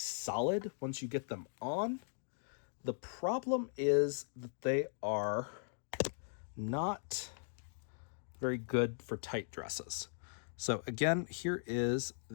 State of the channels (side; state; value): right; silent; digital silence